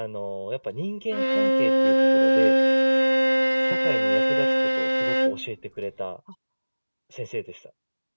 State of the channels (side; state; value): both; inverted; correlation -1.00